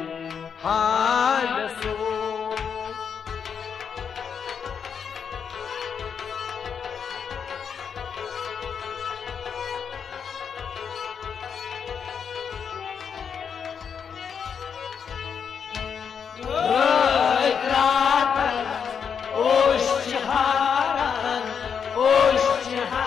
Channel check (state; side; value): quieter; right; 7.0 dB